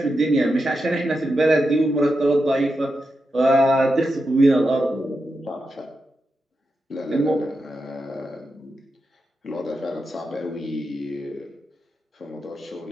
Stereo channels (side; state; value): both; normal; correlation 0.88